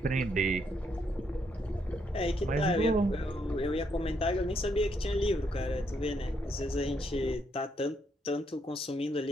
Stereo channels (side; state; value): both; normal; correlation 0.75